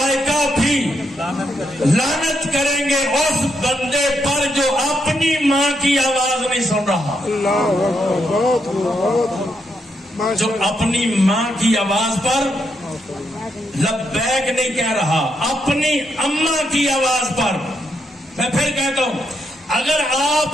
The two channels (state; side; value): normal; both; correlation 0.80